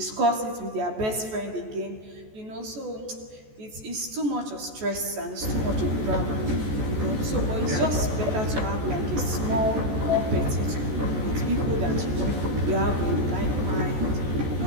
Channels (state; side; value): late; left; 14 ms